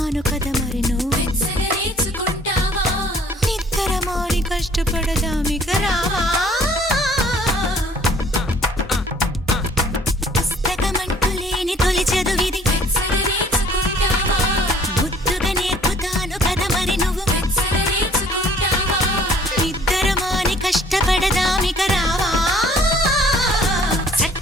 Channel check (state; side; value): normal; both; correlation 0.56